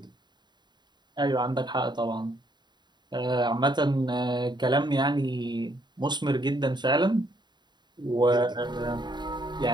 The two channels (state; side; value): late; left; 0.21 ms